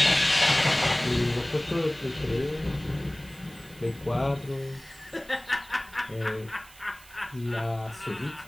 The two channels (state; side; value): noise; right; hiss, 22 dB below the sound